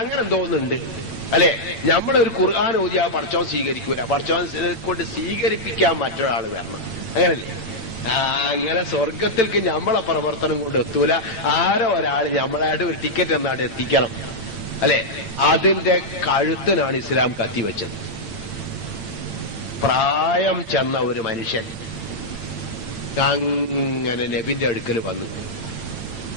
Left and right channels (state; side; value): late; right; 8.9 ms